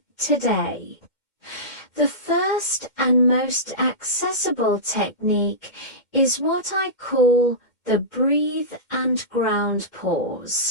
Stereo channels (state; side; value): late; right; 2.1 ms